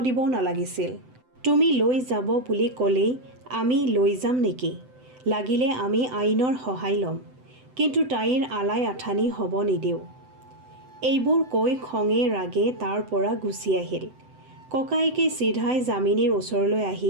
দিব নালাগিছিল। তুমি লৈ যাব বুলি ক'লেই আমি লৈ যাম নেকি? লাগিলে আমি আইনৰ সহায় ল'ম, কিন্তু তাইৰ আলাই আথানি হ'ব নিদিওঁ। এইবোৰ কৈ খঙে ৰাগে তাৰ পৰা গুচি আহিল। ককায়েকে চিধাই যামিনীৰ ওচৰলৈ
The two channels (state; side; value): late; left; 7.9 ms